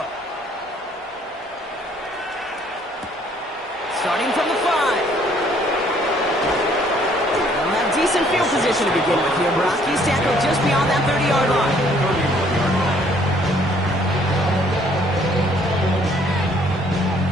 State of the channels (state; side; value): normal; both; correlation 0.62